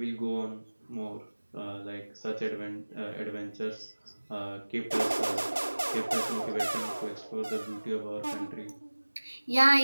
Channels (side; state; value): both; inverted; correlation -1.00